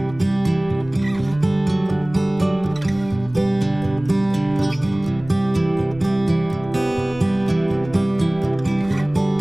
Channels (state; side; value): noise; left; rumble, 20 dB below the sound